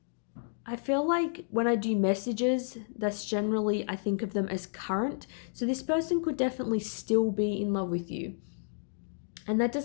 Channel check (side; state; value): right; silent; digital silence